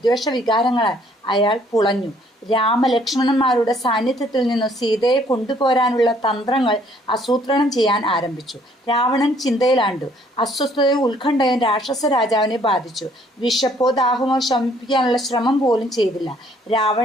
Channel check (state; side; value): normal; both; correlation 0.63